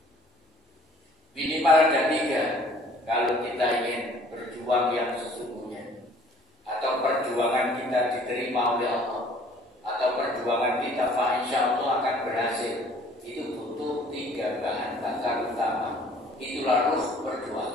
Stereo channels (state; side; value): normal; both; correlation 0.54